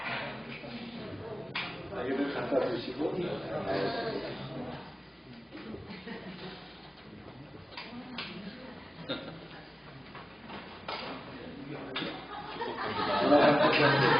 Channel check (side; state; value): both; normal; correlation 0.97